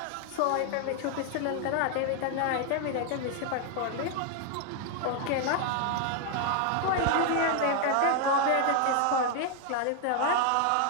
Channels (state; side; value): different; both; correlation 0.01